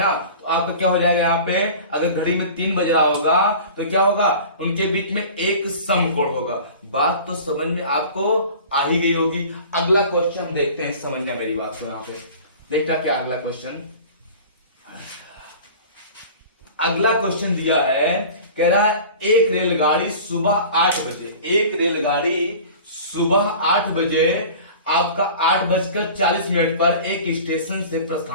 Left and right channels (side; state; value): both; inverted; correlation -0.40